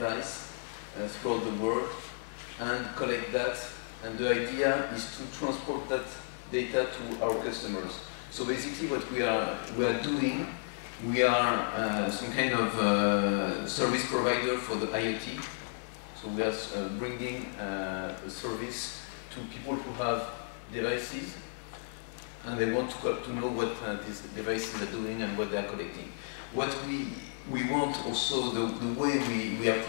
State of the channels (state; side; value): silent; right; digital silence